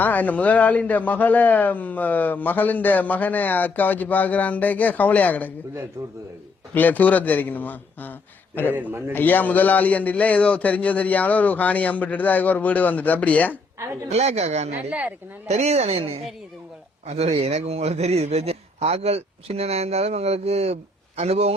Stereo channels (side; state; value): right; quieter; 3.3 dB